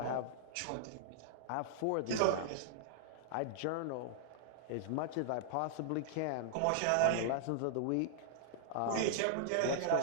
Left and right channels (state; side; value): different; both; correlation -0.01